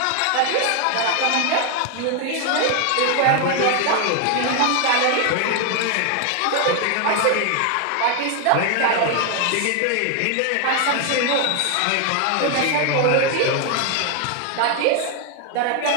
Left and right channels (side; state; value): both; different; correlation 0.01